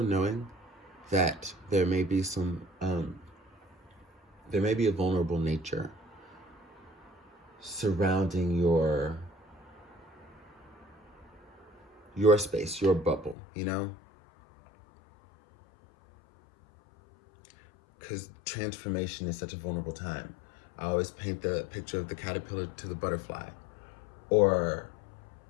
knowing that there may be a vulnerable nature surrounding your space, your bubble, you know? Because transformation is such a vulnerable time. I always paint the picture of the caterpillar to the butterfly. Or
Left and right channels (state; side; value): drops out; right; at 13.4 s